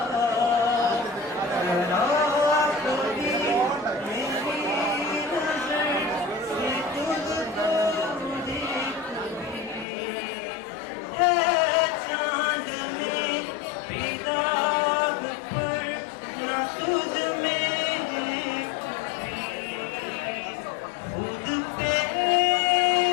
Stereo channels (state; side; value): drops out; right; at 9.9 s